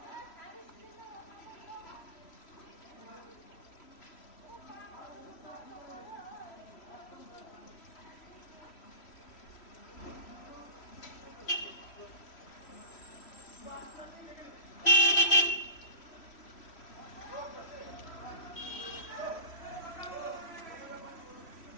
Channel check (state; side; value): late; right; 3.1 ms